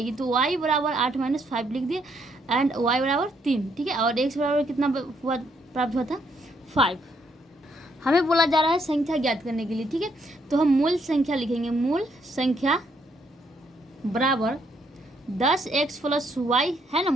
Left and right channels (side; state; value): both; normal; correlation 0.72